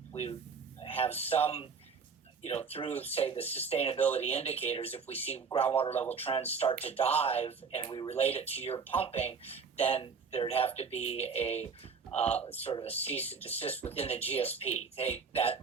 we have some, through, say, the sustainability indicators. If we see groundwater level trends start to dive and we relate it to your pumping, then there'd have to be a sort of a cease and desist within the GSP.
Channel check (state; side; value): quieter; left; 5.6 dB